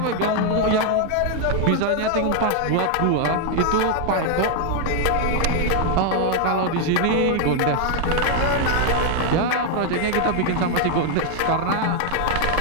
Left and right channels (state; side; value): different; both; correlation 0.00